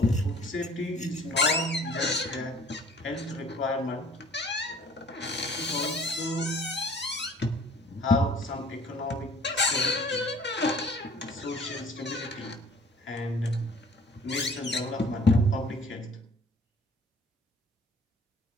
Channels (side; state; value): both; normal; correlation 0.53